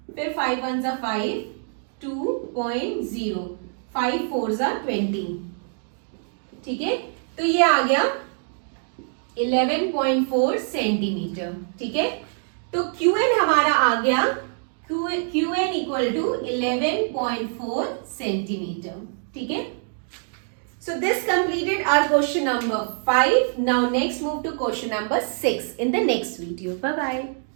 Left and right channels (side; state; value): left; silent; 62 dB below the other